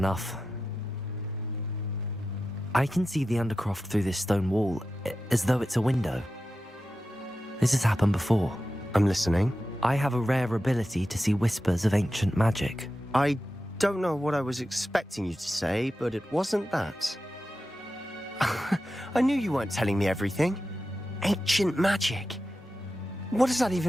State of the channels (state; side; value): normal; both; correlation 0.92